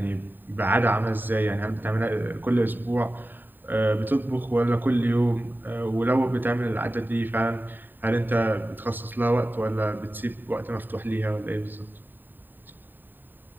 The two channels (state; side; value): late; left; 0.092 ms